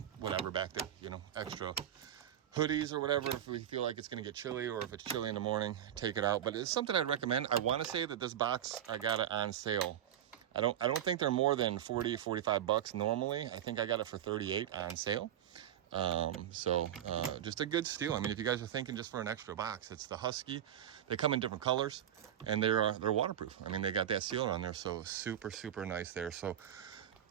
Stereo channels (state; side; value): quieter; left; 10.6 dB